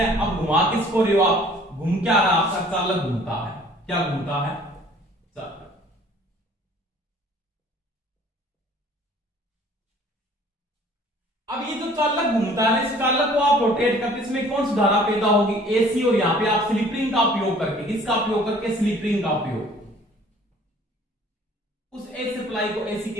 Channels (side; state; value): both; normal; correlation 0.53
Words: अब घुमा किसको रहे हो आप, घूम क्या रहा आपका चालक घूमता है, क्या घूमता है, चालक। अब ये जो जो चालक घूमता है इस चालक को आप रोटेट करते इसमें कौन सी धारा पैदा होगी, एसी, और यहां पे आप स्लिप रिंग का उपयोग करके, किसका उपयोग करके, स्लिप रिंग का उपयोग, उस एसी सप्लाई को एसी